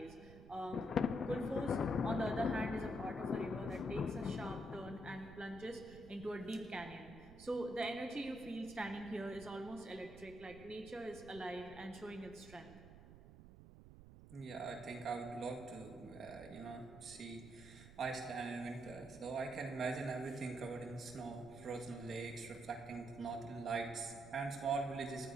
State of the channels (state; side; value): noise; right; rumble, 16 dB below the sound